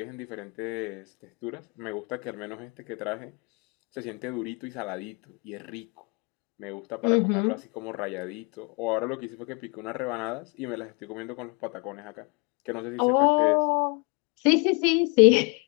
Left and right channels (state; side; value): quieter; right; 31.3 dB